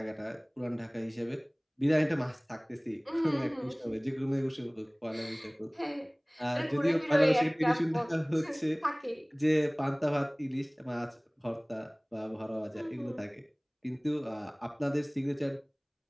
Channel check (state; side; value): identical; both; correlation 1.00